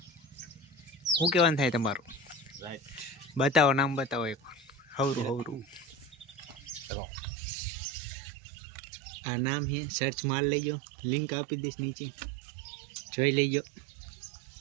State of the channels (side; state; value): left; drops out; at 6.9 s